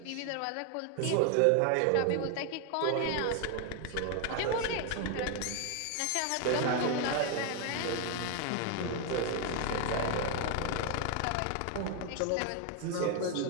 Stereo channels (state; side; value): different; both; correlation 0.01